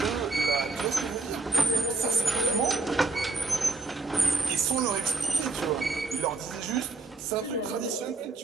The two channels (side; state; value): left; quieter; 3.5 dB